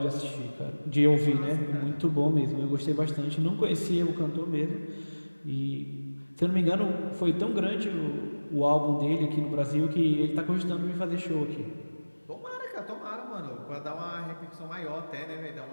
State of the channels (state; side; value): inverted; both; correlation -1.00